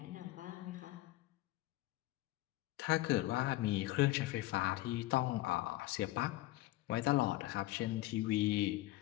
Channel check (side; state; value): right; quieter; 17.3 dB